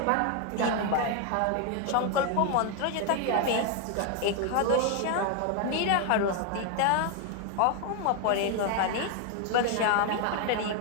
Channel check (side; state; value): both; different; correlation 0.01